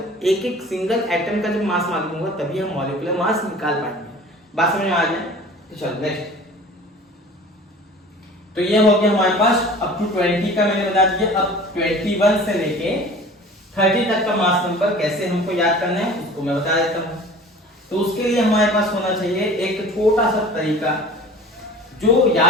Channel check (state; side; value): normal; both; correlation 0.43